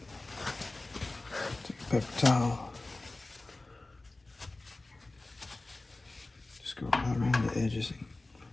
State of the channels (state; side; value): quieter; right; 3.0 dB